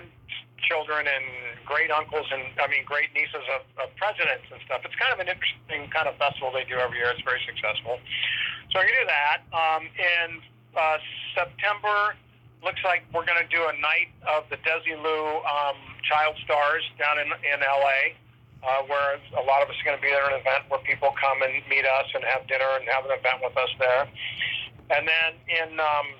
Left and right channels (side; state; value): both; identical; correlation 1.00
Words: and great uncles and, great nieces of presidents and stuff. It's kind of an interesting kind of festival they do every year. It's very successful. So I can do that. In September, looks like we're going to do a night of the Desilu Child Stars down in L.A., where a lot of us are going to be there at an event where people come and meet us and have dinner and have an event with us there. And then